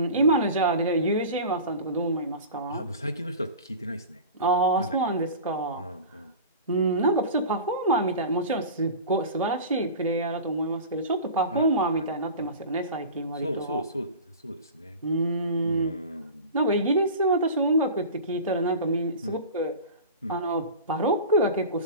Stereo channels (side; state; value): both; inverted; correlation -0.35